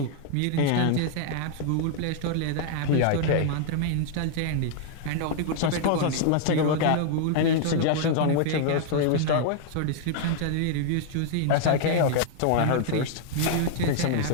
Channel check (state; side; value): different; both; correlation -0.01